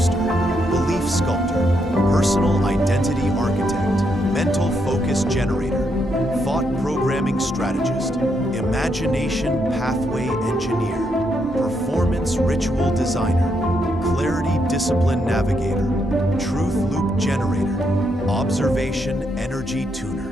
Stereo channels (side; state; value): both; normal; correlation 0.78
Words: belief sculptor, personal identity architect, mental focus generator, thought programming strategist, imagination pathway engineer, performance ritual designer, clarity discipline navigator, truth loop generator, observation energy